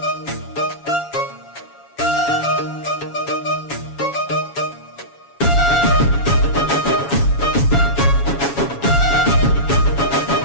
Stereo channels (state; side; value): late; right; 7.2 ms